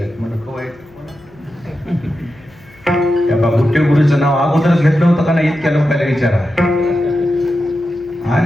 मला कवायचं त्या बाबुट्टे गुरुचं नाव अगोदरच घेतलं होतं का नाही? इतक्या लोकांना विचारा.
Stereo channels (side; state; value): left; noise; hum, 27 dB below the sound